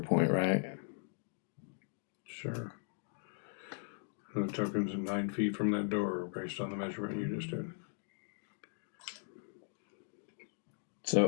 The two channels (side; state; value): right; silent; digital silence